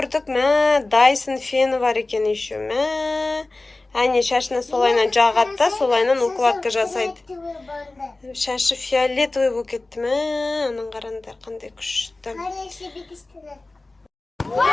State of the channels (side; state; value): right; quieter; 3.1 dB